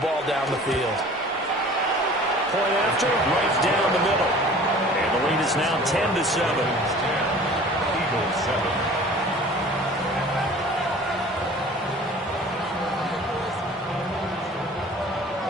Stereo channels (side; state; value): both; normal; correlation 0.46